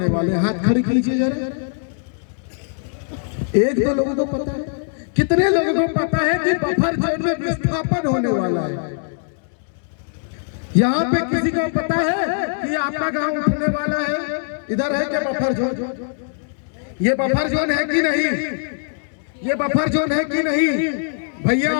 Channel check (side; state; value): right; silent; digital silence